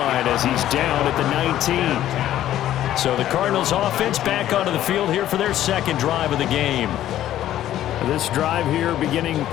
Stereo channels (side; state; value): right; quieter; 12.6 dB